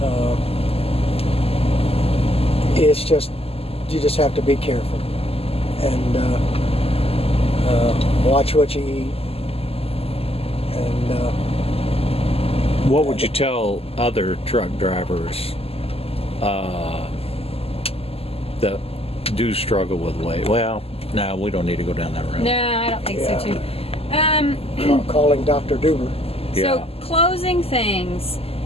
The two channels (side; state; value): right; late; 0.29 ms